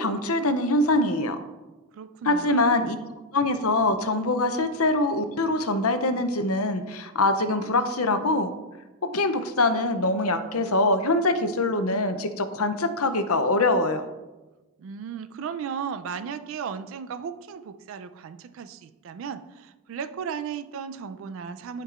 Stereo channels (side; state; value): both; normal; correlation -0.08